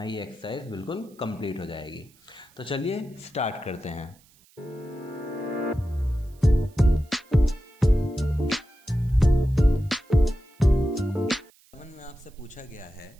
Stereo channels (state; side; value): noise; right; hiss, 30 dB below the sound